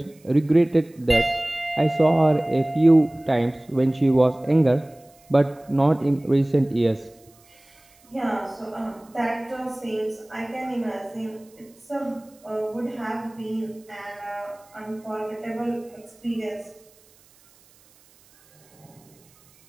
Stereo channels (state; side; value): noise; right; hiss, 30 dB below the sound